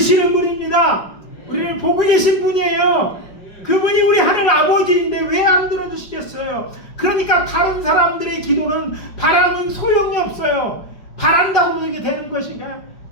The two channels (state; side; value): late; right; 5.2 ms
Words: 분입니다. 우리를 보고 계신 분이에요. 그분이 우리 하늘 아버지인데 왜 안 들어주시겠어요? 그러니까 다른 사람들의 기도는 바람은 소용이 없어요. 바란다고 그렇게 되는 것인가요?